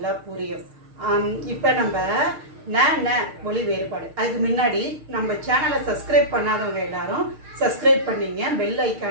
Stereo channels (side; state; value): left; late; 6.5 ms